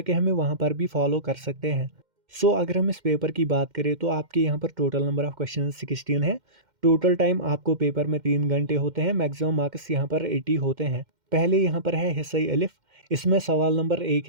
हमें वहाँ पर भी फॉलो कर सकते हैं। अगर हम इस पेपर की बात करें तो आपके यहाँ पर टोटल नंबर ऑफ क्वेश्चन 16 है। टोटल टाइम आपको पेपर में 3 घंटे होते हैं। मैक्सिमम मार्क्स यहाँ पर 80 होते हैं। पहले यहाँ पर है हिस्सा अलिफ। इसमें सवाल नंबर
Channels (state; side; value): late; left; 2.1 ms